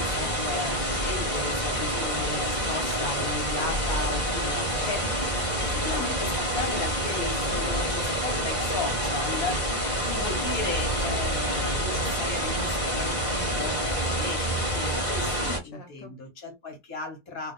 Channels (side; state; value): right; late; 2.0 ms